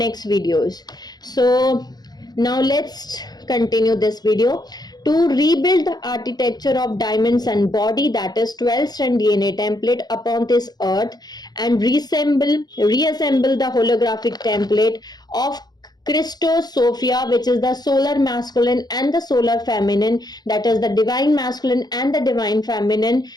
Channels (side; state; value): right; late; 0.19 ms